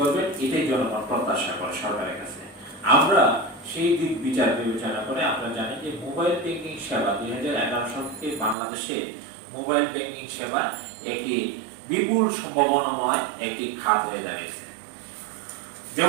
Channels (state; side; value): drops out; left; at 8.6 s